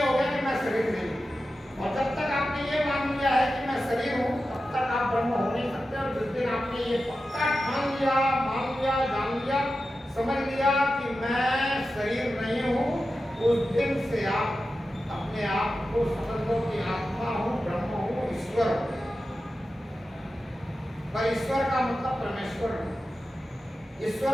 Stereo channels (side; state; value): both; normal; correlation 0.92